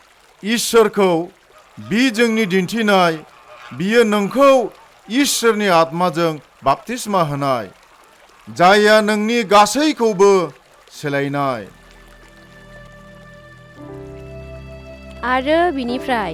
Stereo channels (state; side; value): identical; both; correlation 1.00